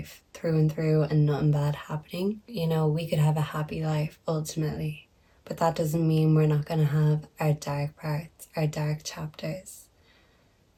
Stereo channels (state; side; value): identical; both; correlation 1.00